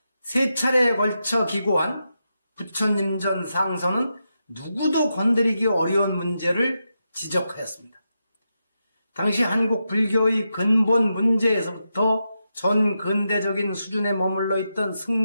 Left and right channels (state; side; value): inverted; both; correlation -0.87